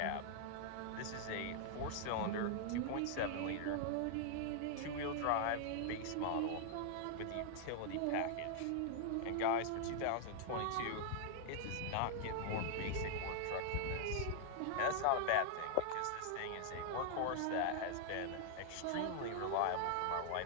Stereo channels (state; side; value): different; both; correlation 0.00